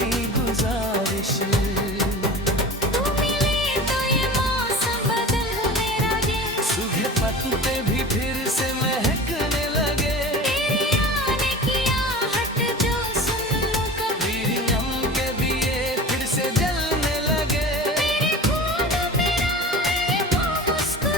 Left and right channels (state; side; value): normal; both; correlation 0.35